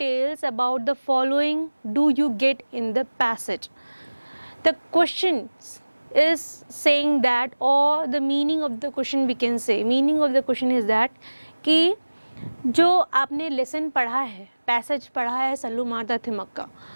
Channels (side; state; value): both; inverted; correlation -1.00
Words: about the following do you get in the passage? The question is saying that, or the meaning of the question we can say, meaning of the question is that कि जो आपने lesson पढ़ा है, passage पढ़ा है सल्लू मारदा थिमक्का,